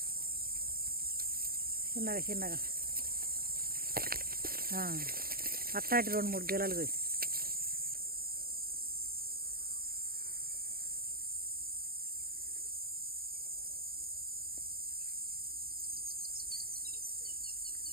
చిన్నగా చిన్నగా అట్లాంటి 2-3 గెలలు పోయి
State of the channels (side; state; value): left; late; 0.43 ms